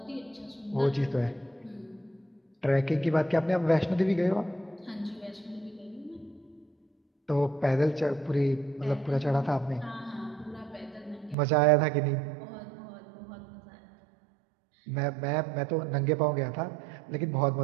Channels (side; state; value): left; drops out; at 11.4 s